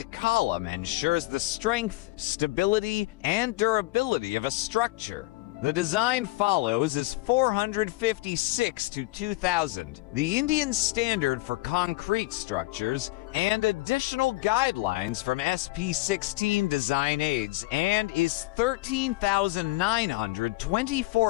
column ensures the strength, stability, and durability of a structure. The design follows is 456 to 2000, the Indian standard for concrete structures, and additional guidelines from SP16 design aids, and is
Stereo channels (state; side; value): quieter; right; 20.6 dB